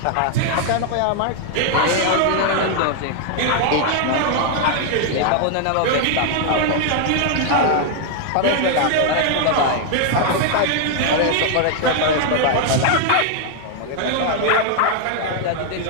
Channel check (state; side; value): different; both; correlation 0.00